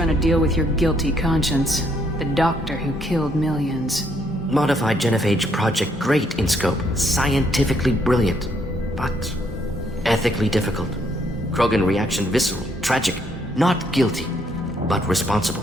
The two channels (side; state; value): both; normal; correlation 0.71